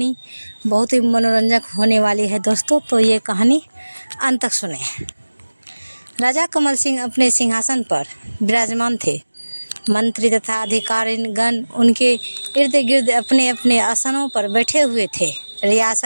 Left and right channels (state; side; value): inverted; both; correlation -1.00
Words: बहुत ही मनोरंजक होने वाली है दोस्तों, तो ये कहानी अंत तक सुने। राजा कमल सिंह अपने सिंहासन पर विराजमान थे। मंत्री तथा अधिकारीगण उनके इर्द गिर्द अपने अपने आसनों पर बैठे हुए थे।